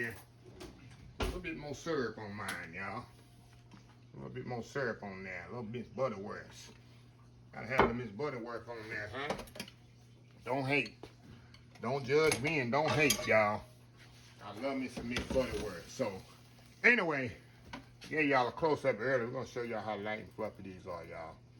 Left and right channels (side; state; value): both; identical; correlation 1.00